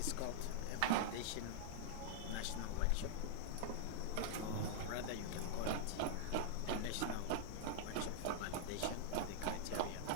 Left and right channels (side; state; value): both; different; correlation -0.01